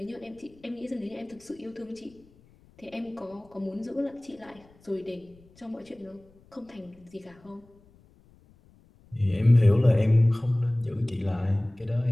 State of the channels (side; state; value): left; noise; rumble, 28 dB below the sound